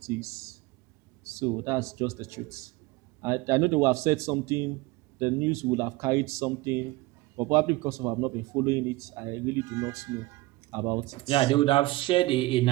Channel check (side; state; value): left; quieter; 20.4 dB